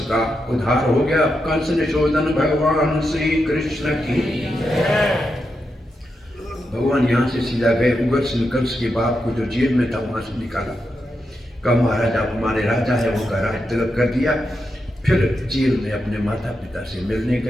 का उद्धार हो गया। कंस निशोधन भगवान श्री कृष्ण की। भगवान यहाँ से सीधा गए, उग्रसेन कंस के बाप को जो जेल में था वहां से निकाला, कहा महाराज आप हमारे राजा है, उनका राज तिलक कर दिया। फिर जेल में अपने माता पिता से मिलने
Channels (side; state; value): both; normal; correlation 0.86